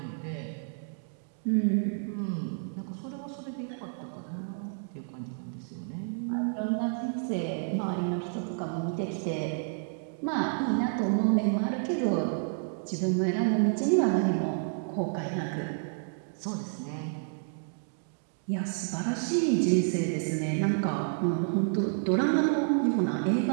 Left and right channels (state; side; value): silent; left; digital silence